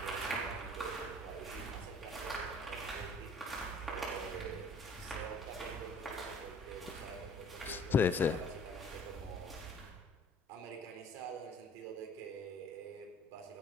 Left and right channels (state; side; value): normal; both; correlation 0.51